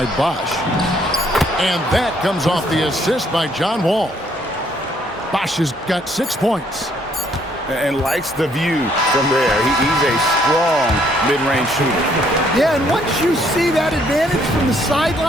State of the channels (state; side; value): normal; both; correlation 0.67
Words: Bosch. And that comes off the assist by John Wall. Bosch has got 6 points. And likes the view from there. He's a strong mid-range shooter. Yeah, and once you see that advantage from the